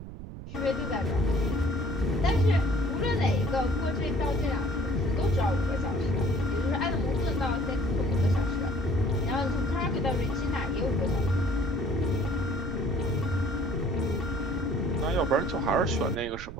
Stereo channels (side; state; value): right; noise; rumble, 11 dB below the sound